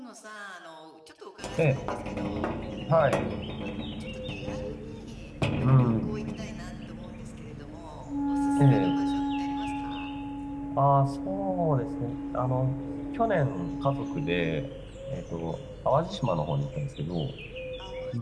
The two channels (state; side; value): identical; both; correlation 1.00